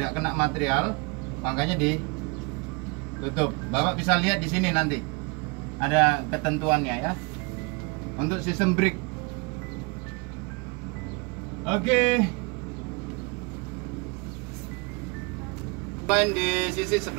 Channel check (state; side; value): quieter; left; 29.7 dB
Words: kena material. Makanya ditutup. Bapak bisa lihat di sini nanti. Ada ketentuannya ya. Untuk sistem brake. Oke. Main di sisi